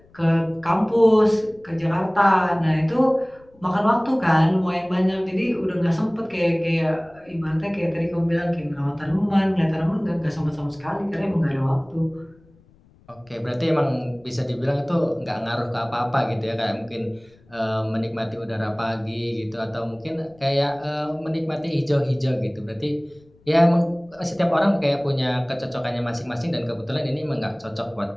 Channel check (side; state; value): left; noise; rumble, 29 dB below the sound